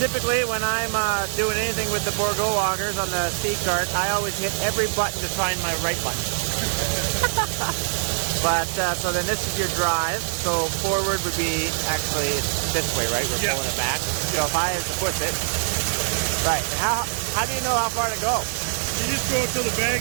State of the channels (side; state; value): left; silent; digital silence